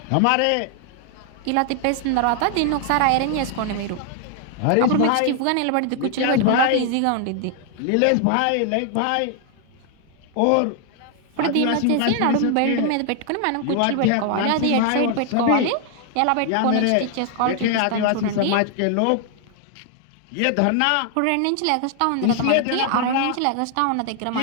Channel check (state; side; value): different; both; correlation 0.00